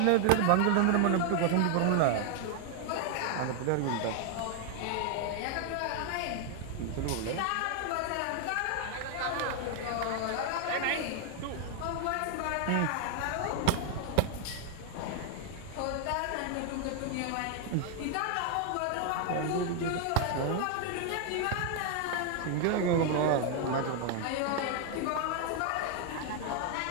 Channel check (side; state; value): both; different; correlation 0.00